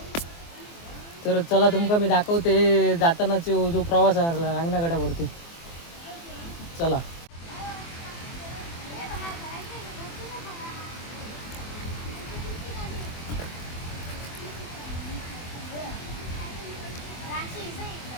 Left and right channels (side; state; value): right; late; 24 ms